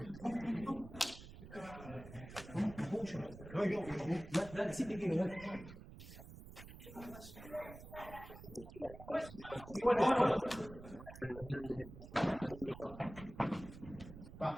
de oro. De quebrar o no. A ver, vamos a ver si quiebran. Hernández y Latrónico.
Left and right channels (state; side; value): noise; right; rumble, 14 dB below the sound